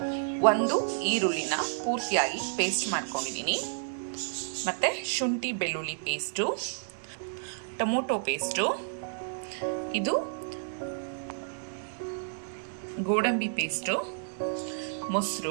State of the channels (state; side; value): silent; left; digital silence